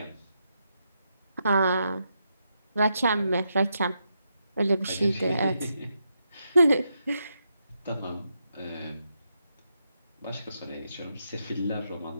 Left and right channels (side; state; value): both; inverted; correlation -0.82